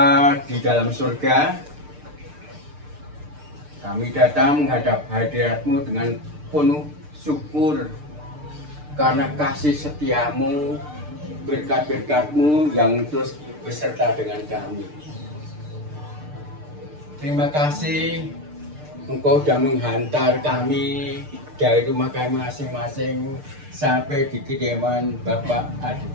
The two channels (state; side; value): late; left; 6.7 ms